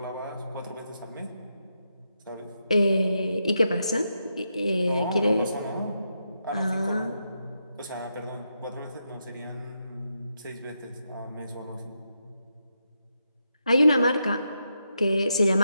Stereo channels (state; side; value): inverted; both; correlation -0.84